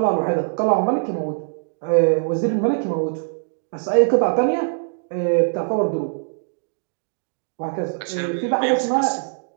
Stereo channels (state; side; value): silent; left; digital silence